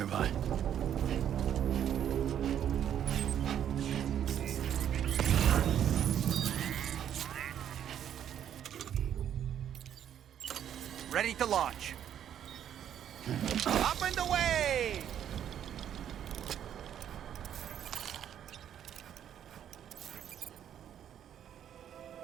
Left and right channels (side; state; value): left; quieter; 9.8 dB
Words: Ready to launch. Up and away!